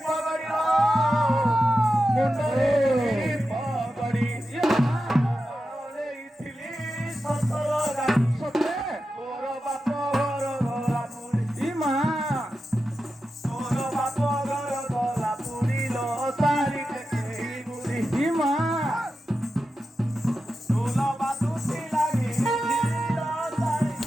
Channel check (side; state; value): both; normal; correlation 0.91